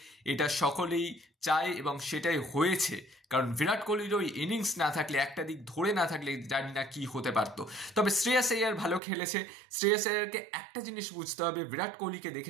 এটা সকলেই চায়, এবং সেটাই হয়েছে। কারণ বিরাট কোহলির ওই ইনিংস না থাকলে, একটা দিক ধরে না থাকলে জানি না কি হতে পারতো। তবে শ্রেয়াস আইয়ার ভালো খেলেছে। শ্রেয়াস আইয়ারকে একটা জিনিস বুঝতে হবে, বিরাট কোহলিকে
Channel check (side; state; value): left; drops out; at 9.0 s